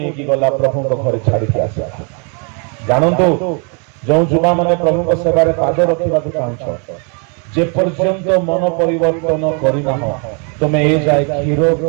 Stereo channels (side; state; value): left; quieter; 36.8 dB